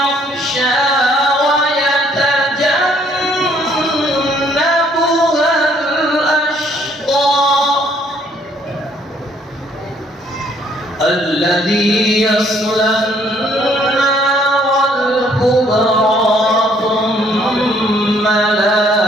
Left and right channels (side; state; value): both; normal; correlation 0.64